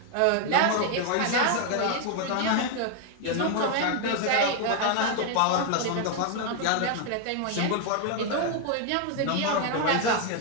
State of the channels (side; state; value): both; different; correlation 0.01